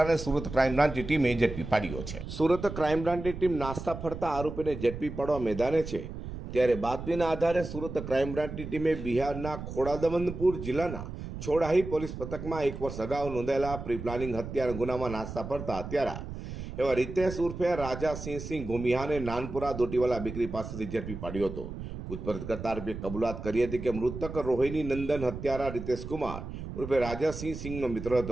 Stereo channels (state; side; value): noise; right; rumble, 9 dB below the sound